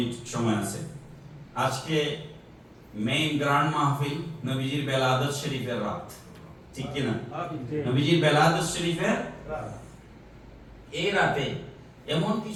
সময় আছে। আজকে মেইন গ্র্যান্ড মাহফিল নবীজির বেলাদত শরীফের রাত, ঠিক কি না? নবীজির বেলাদত শরীফের এই রাতে এমন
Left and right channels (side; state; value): both; identical; correlation 1.00